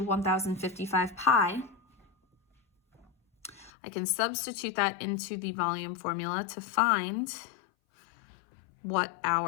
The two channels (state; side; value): drops out; right; at 3.7 s